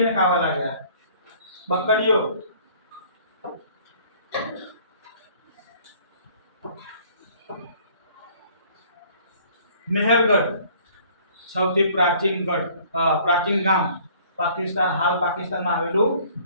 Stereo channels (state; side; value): inverted; both; correlation -0.55